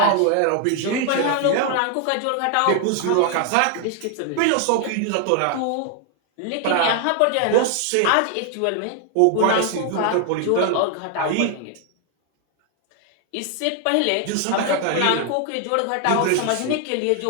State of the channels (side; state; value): both; different; correlation 0.00